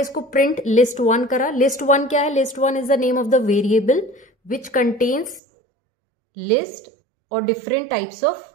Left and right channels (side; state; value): left; drops out; at 5.4 s